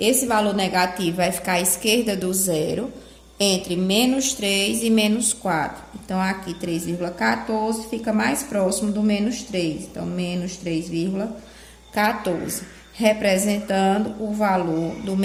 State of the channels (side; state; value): both; identical; correlation 1.00